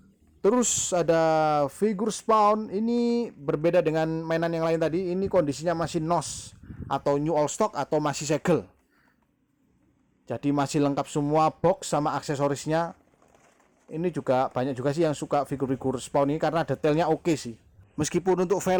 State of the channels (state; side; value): identical; both; correlation 1.00